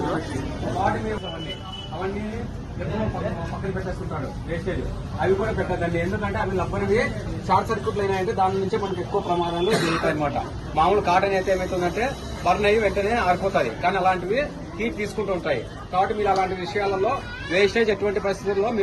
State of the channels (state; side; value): identical; both; correlation 1.00